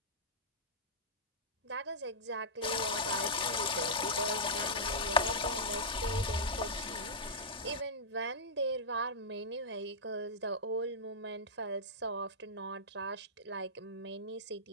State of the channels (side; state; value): both; normal; correlation -0.12